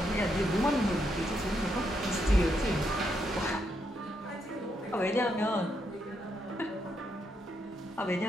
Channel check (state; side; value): normal; both; correlation 0.79